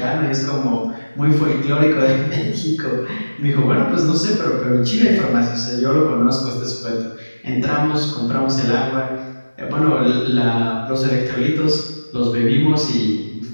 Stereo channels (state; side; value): inverted; both; correlation -1.00